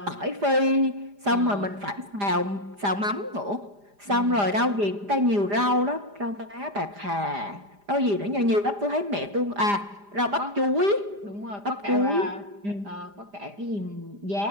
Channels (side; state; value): left; late; 5.0 ms